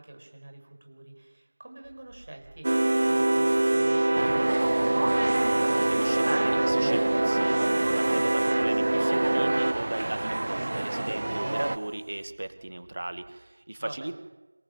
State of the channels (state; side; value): inverted; both; correlation -1.00